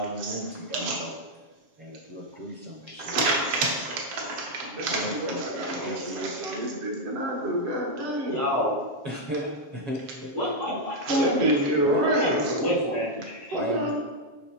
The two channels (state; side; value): late; left; 7.3 ms